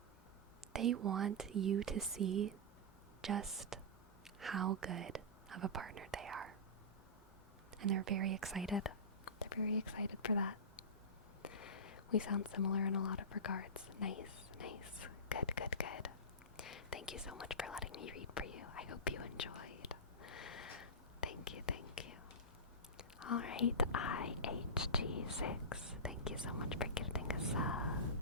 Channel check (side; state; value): both; normal; correlation -0.17